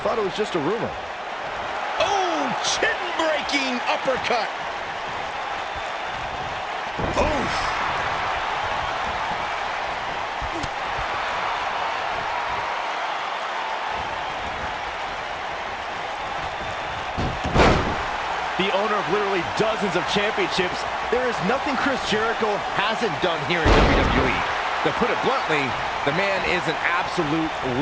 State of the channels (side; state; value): both; identical; correlation 1.00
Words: it was just a rumor. Oh, chin-breaking uppercut. Oh! The owner of literally dozens of championships, there is nothing Chris Jericho hasn't done here in WWE. To put it bluntly, the man is an absolute